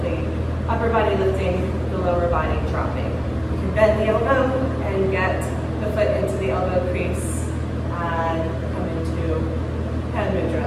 the upper body lifting, the lower body dropping. You can bend the elbow and get the foot into the elbow crease and come into hand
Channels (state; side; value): identical; both; correlation 1.00